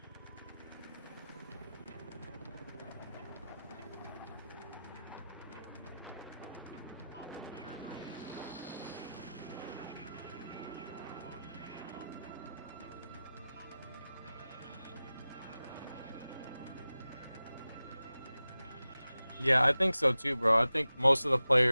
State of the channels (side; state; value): both; inverted; correlation -0.95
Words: Yeah, I think so too, bro. I think most of the